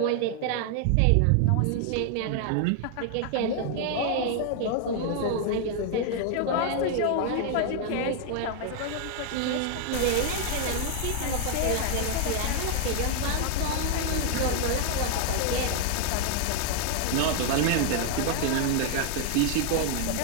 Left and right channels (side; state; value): both; different; correlation 0.00